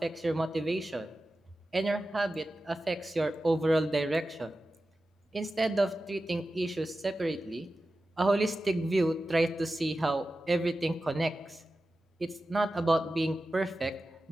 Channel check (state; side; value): normal; both; correlation 0.93